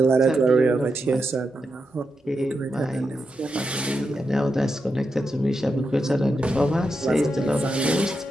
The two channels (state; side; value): normal; both; correlation 0.86